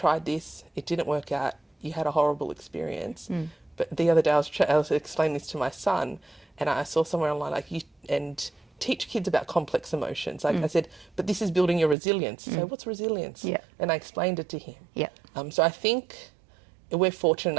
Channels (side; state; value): left; drops out; at 12.0 s